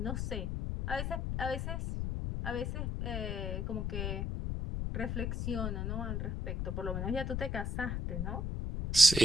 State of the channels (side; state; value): left; noise; rumble, 1 dB below the sound